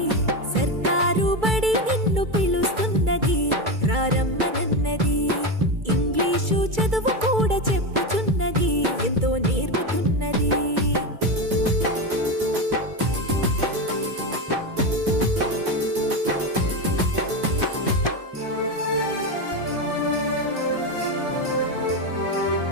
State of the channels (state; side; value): late; left; 2.3 ms